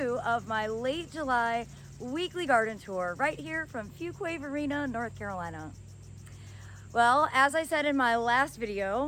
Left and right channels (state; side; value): identical; both; correlation 1.00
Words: of my late July weekly garden tour right here from Fuquay Arena, North Carolina. Well, as I said in my last